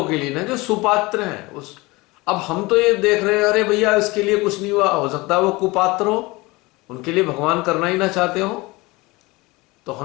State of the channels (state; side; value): quieter; right; 22.9 dB